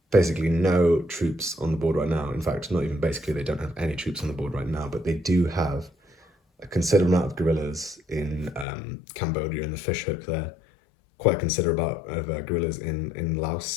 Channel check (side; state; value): right; drops out; at 8.7 s